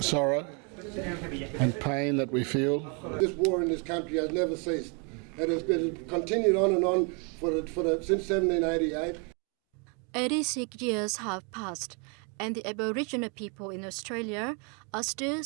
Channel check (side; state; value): left; quieter; 35.4 dB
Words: and pain that we feel. This war in this country has never ceased. It has been continued on and on since 1788. 86 years have passed, and the Aboriginal people in Australia are still